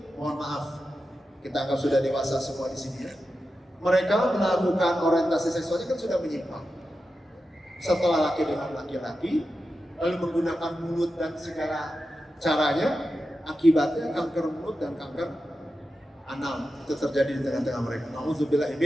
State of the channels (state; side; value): normal; both; correlation 0.91